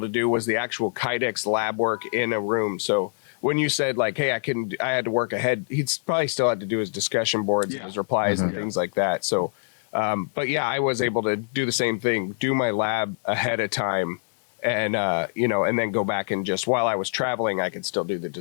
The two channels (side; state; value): right; silent; 62 dB below the other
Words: to do was the actual Kydex lab work in a room. So when you said like, hey, I had to work ahead, he'd probably still had to do his discussion boards and his replies and things like that. So, but yeah, I was able to do the same thing, do my lab ahead of time and, and then go back and just while I was traveling, I could still do the